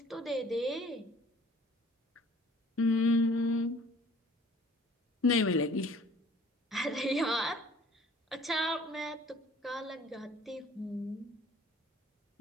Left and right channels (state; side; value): normal; both; correlation 0.53